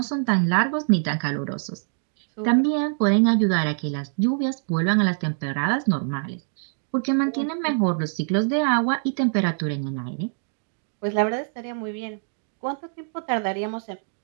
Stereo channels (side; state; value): left; silent; digital silence